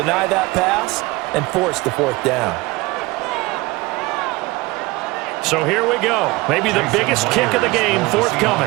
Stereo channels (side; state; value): left; quieter; 22.1 dB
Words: that pass and force the 4th down. So here we go. Maybe the biggest kick of the game